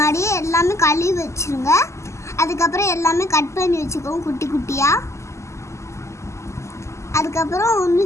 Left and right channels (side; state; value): right; late; 0.14 ms